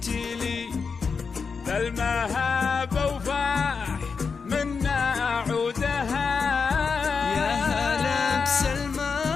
بالمهابة وفاح منا عودها. يا هلا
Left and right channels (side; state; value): right; quieter; 5.3 dB